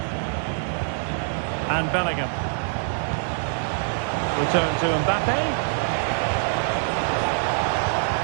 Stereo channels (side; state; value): left; silent; digital silence